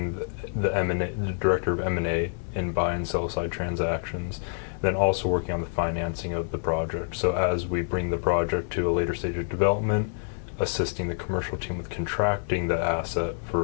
the director of M&A in buy and sell-side transactions, then also working on the financing of the project. So as we bring the project to a later stage of development, assisting the commercial team with contracting the asset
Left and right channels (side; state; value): right; silent; digital silence